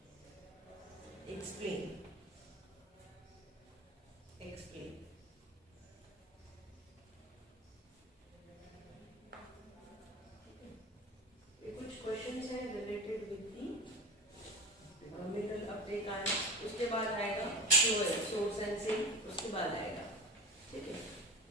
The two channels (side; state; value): both; normal; correlation 0.32